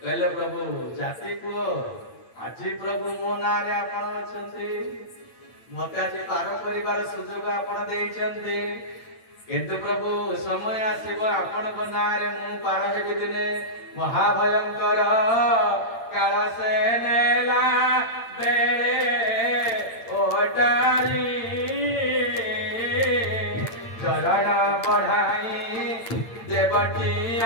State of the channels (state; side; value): late; right; 8.8 ms